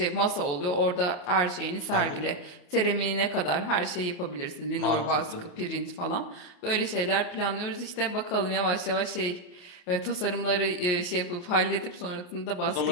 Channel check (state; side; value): late; right; 28 ms